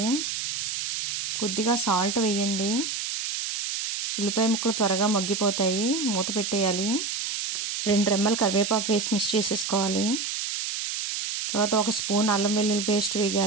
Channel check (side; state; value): right; noise; hiss, 3 dB below the sound